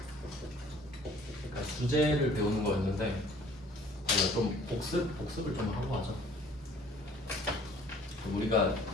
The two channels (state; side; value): normal; both; correlation 0.54